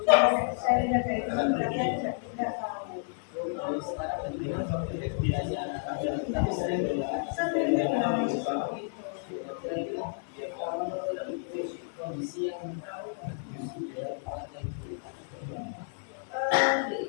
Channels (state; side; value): silent; right; 57 dB below the other